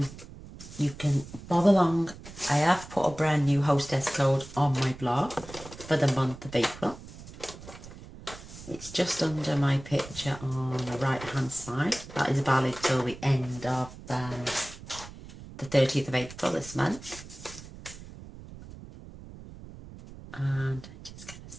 you can bob along. I have put a brand new hostess code on my blog for the month of April. It's just under my picture on the right hand side. That is valid till the end of the 30th of April this month. And I'm just going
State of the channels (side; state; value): right; noise; rumble, 15 dB below the sound